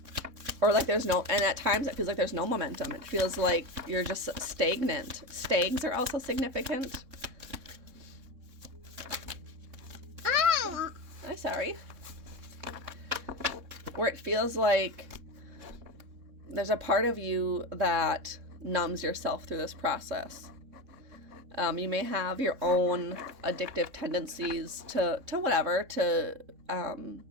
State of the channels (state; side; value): late; left; 3.6 ms